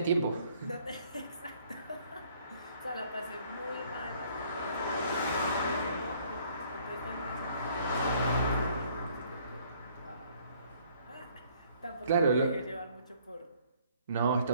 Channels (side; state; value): both; inverted; correlation -0.61